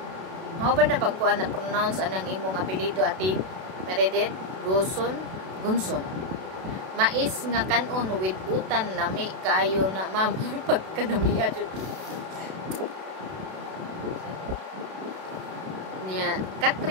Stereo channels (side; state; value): left; late; 32 ms